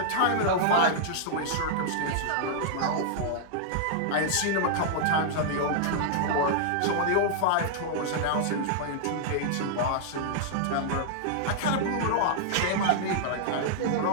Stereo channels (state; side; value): different; both; correlation -0.01